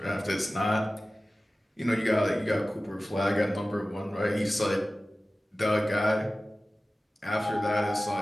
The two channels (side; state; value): both; normal; correlation 0.96